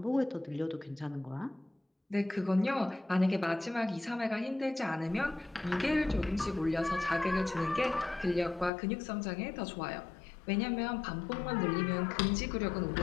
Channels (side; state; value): right; drops out; at 8.7 s